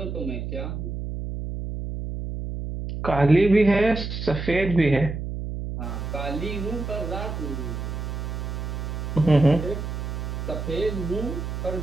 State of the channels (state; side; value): noise; right; hum, 5 dB below the sound